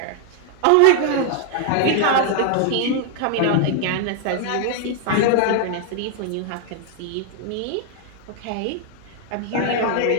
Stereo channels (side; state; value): both; different; correlation 0.00